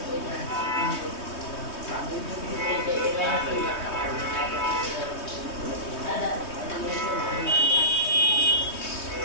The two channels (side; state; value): right; late; 3.2 ms